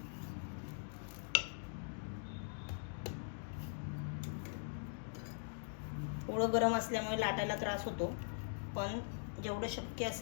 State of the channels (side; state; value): right; silent; digital silence